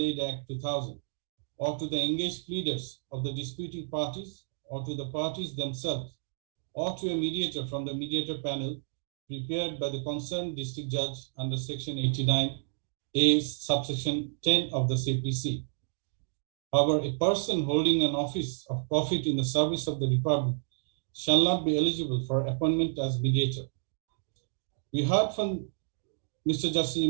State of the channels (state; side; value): silent; left; digital silence